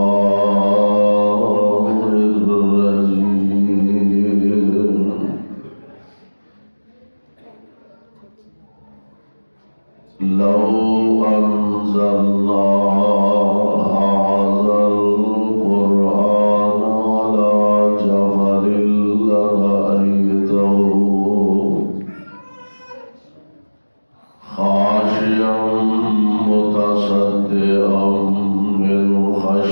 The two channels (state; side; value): inverted; both; correlation -1.00